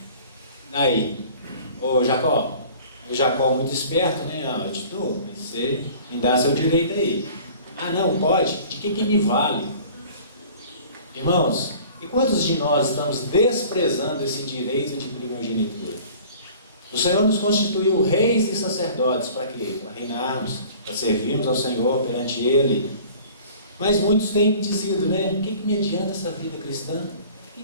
Aí, ô Jacó, o Jacó muito esperto, né? Eu te dou, mas você me dá seu direito aí. Não, pode? De que me vale? Irmãos, e quantos de nós estamos desprezando esse direito de primogenitura? O Senhor nos constituiu reis e sacerdotes para quê? Para reinarmos, para servirmos ao Senhor perante Ele. Mas muitos têm dizido, né? O que me adianta essa vida cristã? O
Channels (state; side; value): inverted; both; correlation -0.47